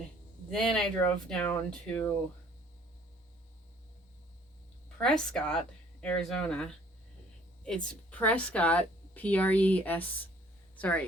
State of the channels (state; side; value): normal; both; correlation 0.58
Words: then I drove down to Prescott, Arizona. It's Prescott, Prescott,